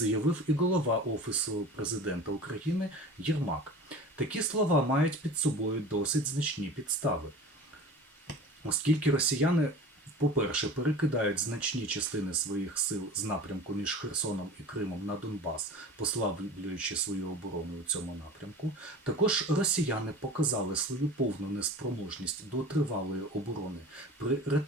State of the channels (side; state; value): both; normal; correlation 0.37